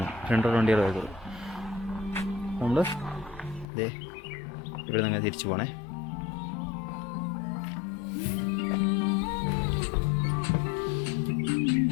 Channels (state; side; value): drops out; right; at 3.7 s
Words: വണ്ടികളെ വരത്തുള്ളൂ. നമ്മൾ ഇതേ ഇവിടെ നിന്ന് തിരിച്ചു പോകണേ.